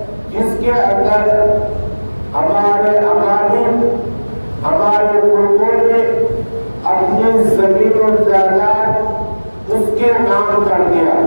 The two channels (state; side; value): inverted; both; correlation -1.00